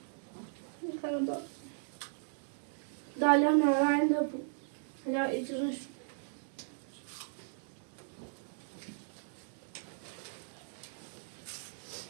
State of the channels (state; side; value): silent; left; digital silence